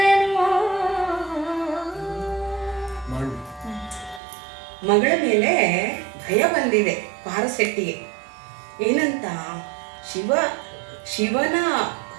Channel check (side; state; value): left; drops out; at 4.2 s